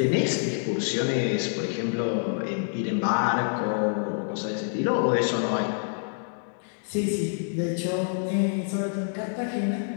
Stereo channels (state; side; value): silent; right; digital silence